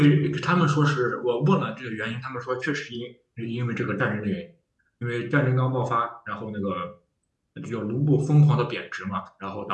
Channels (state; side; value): identical; both; correlation 1.00